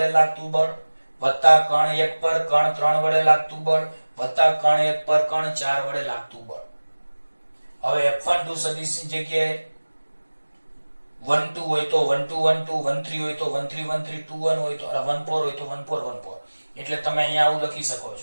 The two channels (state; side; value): inverted; both; correlation -1.00